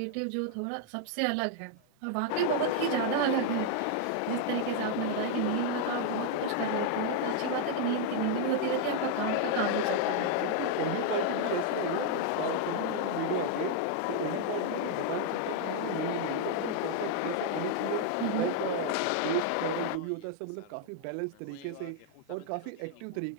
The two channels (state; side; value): different; both; correlation 0.00